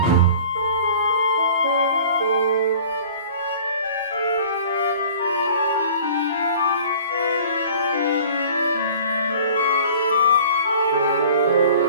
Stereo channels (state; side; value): inverted; both; correlation -0.46